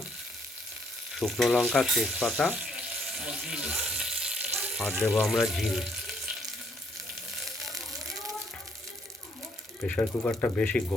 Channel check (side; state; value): both; normal; correlation 0.68